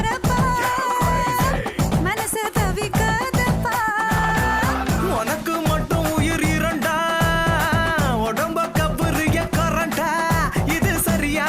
மனசு தவிக்காதப்பா உனக்கு மட்டும் உயிர் இரண்டா உடம்ப கபுரிய கரண்டா இது சரியா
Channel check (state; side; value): identical; both; correlation 1.00